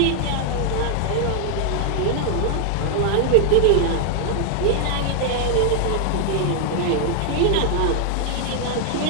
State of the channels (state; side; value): different; both; correlation 0.00